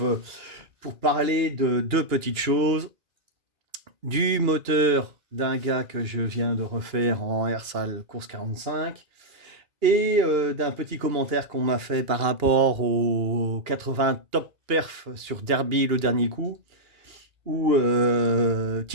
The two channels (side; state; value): left; late; 2.8 ms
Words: pour parler de deux petites choses. Du moteur d'un gars que je viens de refaire en Airsal Course 45 et d'un petit commentaire qu'on m'a fait par rapport aux 80 top perf sur Derby le dernier coup, où